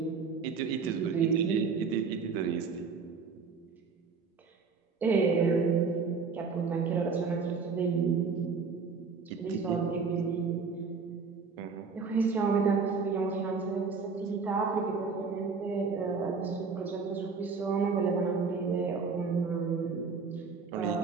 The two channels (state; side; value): quieter; left; 5.1 dB